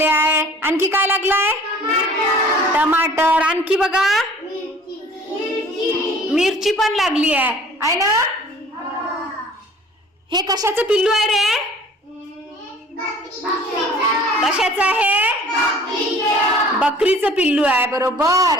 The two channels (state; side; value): normal; both; correlation 0.49